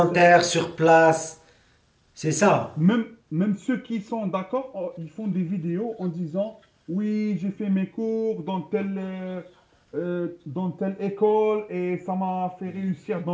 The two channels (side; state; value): both; identical; correlation 1.00